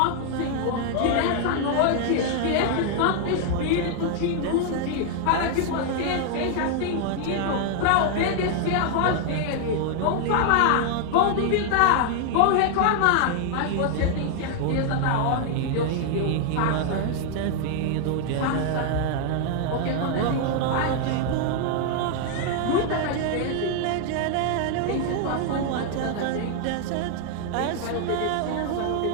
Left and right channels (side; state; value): both; different; correlation 0.00